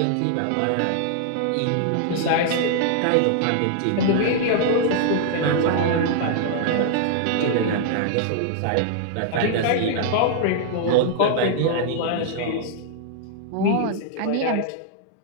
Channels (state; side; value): different; both; correlation -0.01